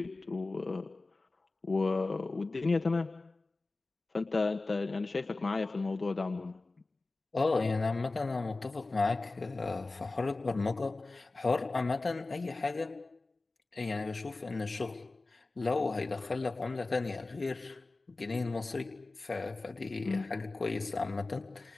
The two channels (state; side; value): quieter; right; 3.3 dB